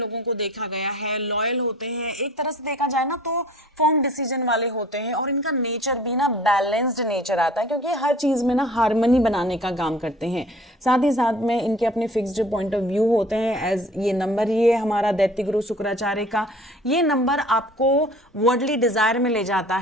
को देखा गया है, लॉयल होते हैं, एक तरह से देखा जाए ना तो फर्म डिसीजन वाले होते हैं। और इनका नेचर भी ना बैलेंस्ड नेचर आता है क्योंकि हर चीज में ना हार्मनी बनाने का काम करते हैं। साथ ही साथ में इनके अपने फिक्स्ड पॉइंट ऑफ व्यू होते हैं। एज ये नंबर ही है हमारा दैत्य गुरु शुक्राचार्य का, ये नंबर आपको वर्ल्डली डिजायर में ले जाता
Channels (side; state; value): both; normal; correlation 0.48